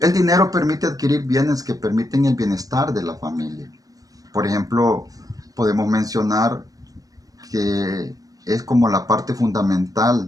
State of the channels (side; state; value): left; late; 0.17 ms